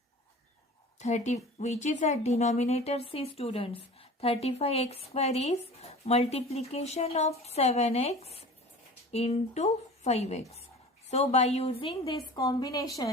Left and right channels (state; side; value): normal; both; correlation 0.40